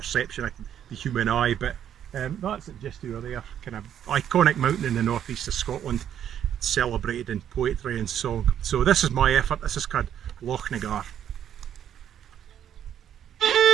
of the human eye, but that's it just over there. Kind of iconic mountain in the northeast of Scotland, celebrated in poetry and song. So this is my effort. This is called Loch Nagar.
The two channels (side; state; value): left; quieter; 9.8 dB